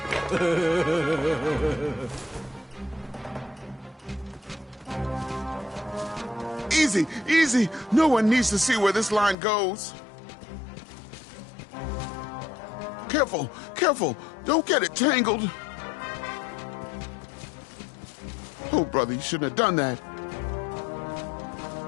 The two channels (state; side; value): drops out; right; at 9.3 s